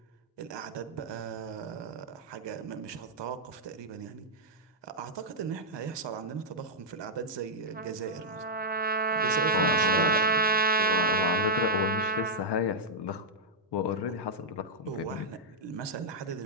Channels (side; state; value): both; normal; correlation -0.06